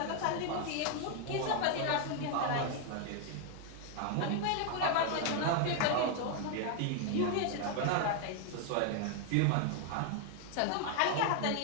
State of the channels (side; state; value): both; different; correlation 0.00